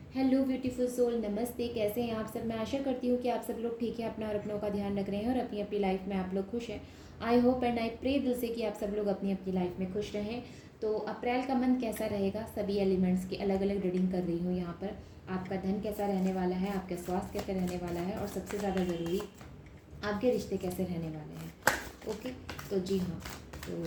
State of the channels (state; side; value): identical; both; correlation 1.00